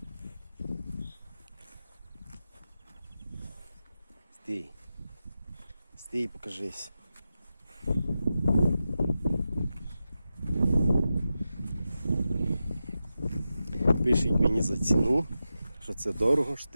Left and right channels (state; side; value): inverted; both; correlation -0.91